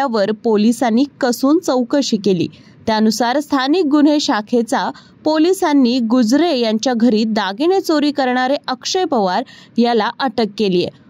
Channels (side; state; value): both; identical; correlation 1.00